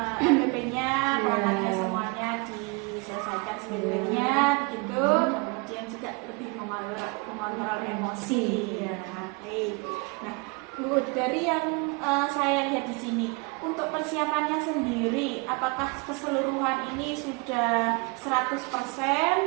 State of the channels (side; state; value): left; quieter; 29.8 dB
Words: LPP-nya perangkatnya semuanya diselesaikan sebaik-baiknya begitu. Kemudian juga lebih mengontrol emosi. Baik. Nah, Bu, dari yang saya lihat di sini, untuk persiapannya sendiri, apakah keseluruhan ini sudah